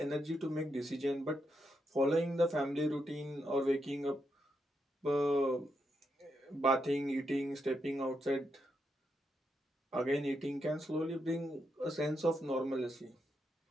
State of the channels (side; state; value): both; normal; correlation 0.82